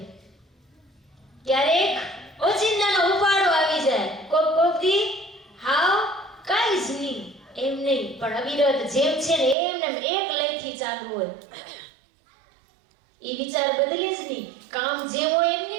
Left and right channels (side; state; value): left; drops out; at 9.6 s